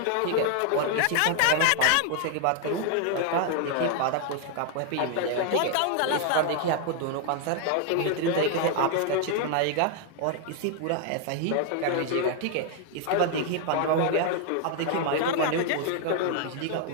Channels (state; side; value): different; both; correlation 0.00